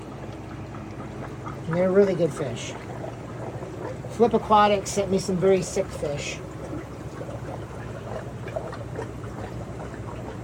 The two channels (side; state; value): both; identical; correlation 1.00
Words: And they're really good fish. Flip Aquatics sent me some very sick fish.